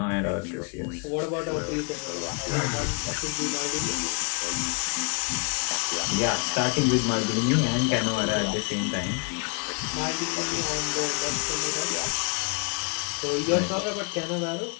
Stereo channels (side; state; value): right; quieter; 36.2 dB